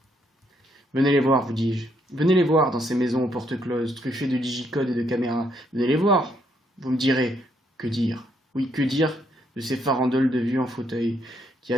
Venez les voir, vous dis-je. Venez les voir dans ces maisons aux portes closes, truffées de digicodes et de caméras. Venez les voir. Vous me direz, que dire? Oui, que dire de ces farandoles de vieux en fauteuil, qui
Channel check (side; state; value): both; normal; correlation 0.73